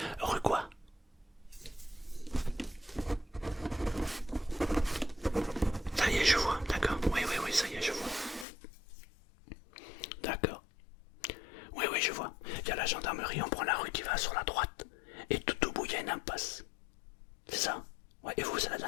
Rue quoi? Ça y est, je vois, d'accord. Oui, oui, oui, ça y est, je vois. D'accord. Oui, oui, je vois. Il y a la gendarmerie, on prend la rue qui va sur la droite. Et tout au bout, il y a une impasse. C'est ça? Ouais, et vous, c'est la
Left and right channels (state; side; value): drops out; right; at 8.5 s